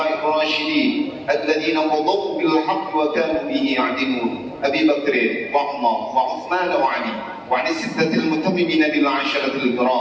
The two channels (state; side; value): identical; both; correlation 1.00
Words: الراشدين الذين قضوا بالحق وكانوا به يعدلون أبي بكر وعمر وعثمان وعلي وعن الستة المتممين بالعشرة